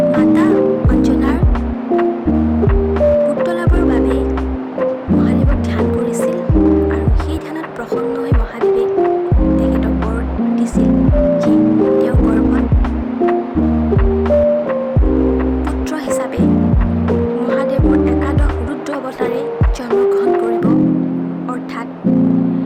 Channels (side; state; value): both; identical; correlation 1.00